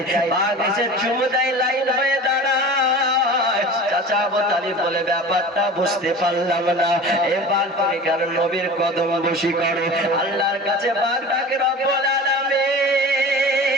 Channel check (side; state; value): both; normal; correlation 0.36